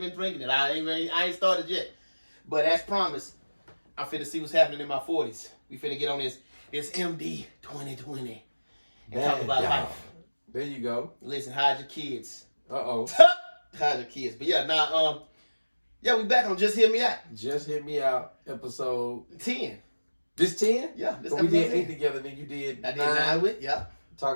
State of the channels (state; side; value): inverted; both; correlation -1.00